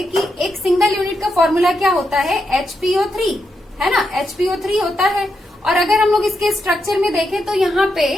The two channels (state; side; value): normal; both; correlation 0.83